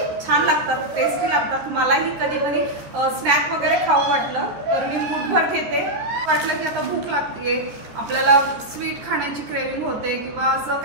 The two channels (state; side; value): late; left; 13 ms